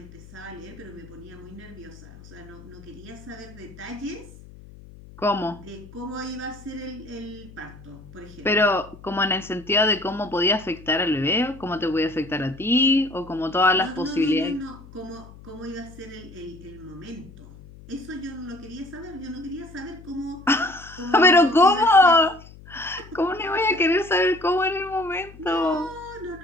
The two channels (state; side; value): noise; left; hum, 19 dB below the sound